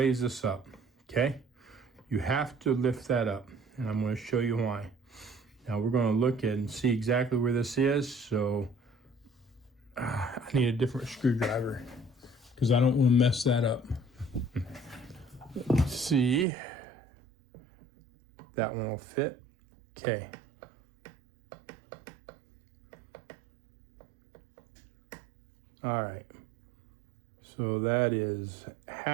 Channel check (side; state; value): left; drops out; at 16.4 s